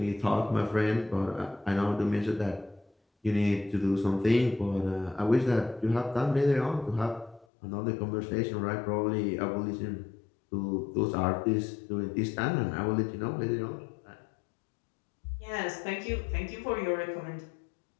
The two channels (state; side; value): drops out; right; at 7.5 s